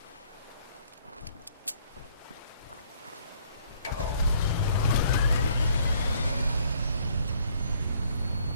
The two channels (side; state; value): both; inverted; correlation -0.63